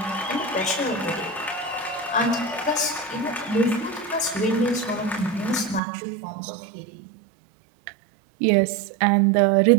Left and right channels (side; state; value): left; drops out; at 5.8 s